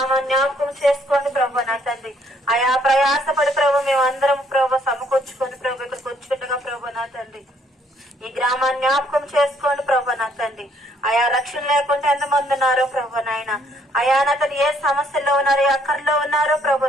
జ్ఞాపకం చేసుకోండి ప్రభు నా తండ్రి. అయా ప్రయాసపడి ప్రభు మేము అందరం ప్రభు సమకూర్చుకొని ప్రభు ఇక్కడికి వచ్చుండగా ప్రభు నా తండ్రి ఈ గ్రామాన్ని జ్ఞాపకం చేసుకోండి ప్రభు నా తండ్రి. అయా రక్షణ లేకుండా ఎంతమంది ఉన్నారో ప్రభు నాయన. అయా నా తండ్రి ఏ సమస్యల్లో ఉన్నారో ఏ అక్కర్లో ఉన్నారో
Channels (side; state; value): both; normal; correlation 0.66